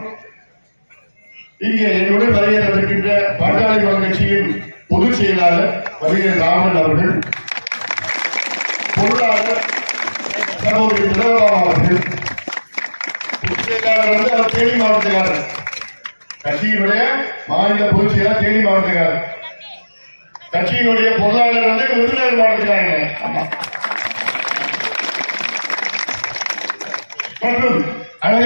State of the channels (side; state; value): both; inverted; correlation -1.00